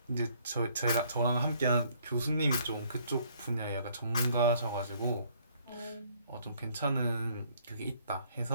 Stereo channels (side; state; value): both; inverted; correlation -0.63